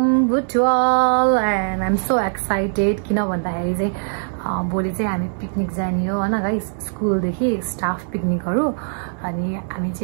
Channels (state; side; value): silent; left; digital silence